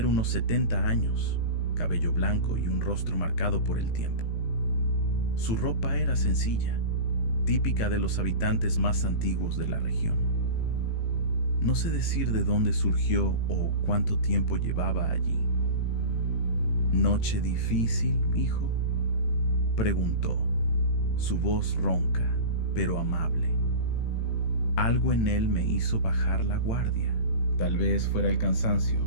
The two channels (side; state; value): right; late; 18 ms